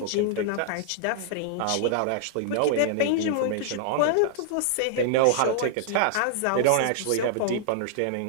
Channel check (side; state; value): both; different; correlation -0.01